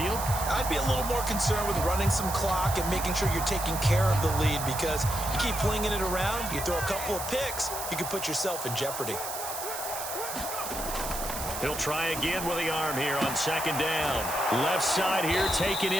I'd be a little more concerned with running some clock and making sure you're taking care of the lead, because you keep flinging it around, you throw a couple of picks, you can put yourself in jeopardy. He'll try again with the arm here on second down. Left side here taken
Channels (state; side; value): noise; right; hiss, 7 dB below the sound